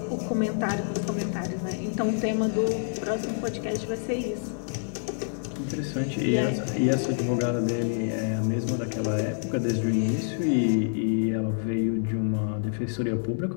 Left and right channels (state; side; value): silent; right; digital silence